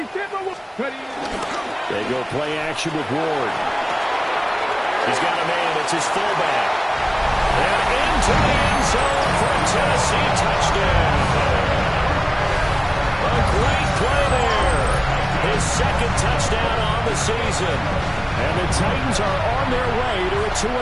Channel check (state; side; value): identical; both; correlation 1.00